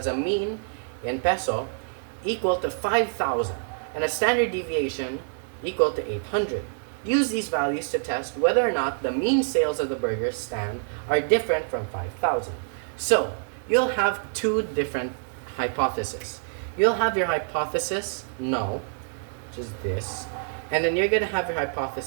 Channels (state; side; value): silent; left; digital silence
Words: a mean in peso equal to 5,000 and a standard deviation equal to 800. Use these values to test whether or not the mean sales of the burger stand are different from 5,000. So, you'll have two different hypotheses. You'll have your hypothesis null, which is this, and then you're going to have your